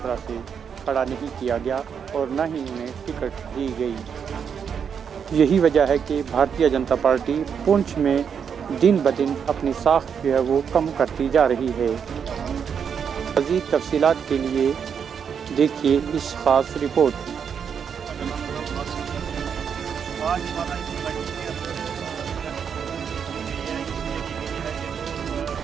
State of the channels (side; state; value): left; quieter; 7.2 dB